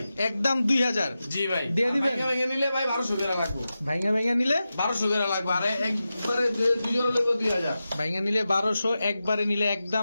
একদম 2000? জি ভাই। দিয়ে দিবেন? ভাঙা নিলে ভাই 1200 টাকা লাগবে। ভাইঙ্গা ভাইঙ্গা নিলে 1200 টাকা লাগবে, আর একবারে দুই জোড়া লাগবে 2000। ভাইঙ্গা নিলে 1200, একবারে নিলে একদম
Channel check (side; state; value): both; inverted; correlation -0.92